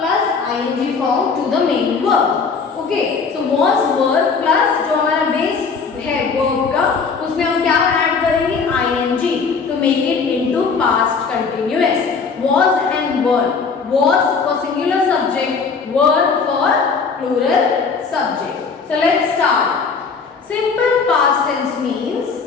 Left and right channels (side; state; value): right; quieter; 5.2 dB